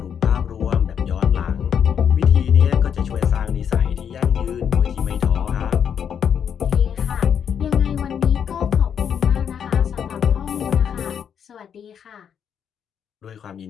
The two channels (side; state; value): right; quieter; 8.0 dB